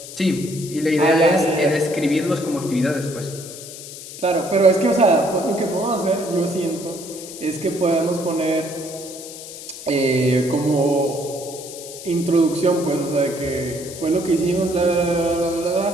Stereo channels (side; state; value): left; noise; hiss, 13 dB below the sound